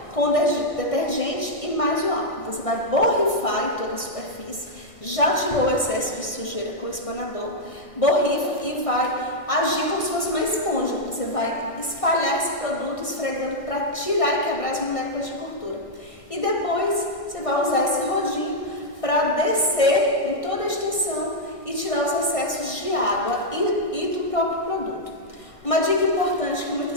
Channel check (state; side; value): late; right; 1.6 ms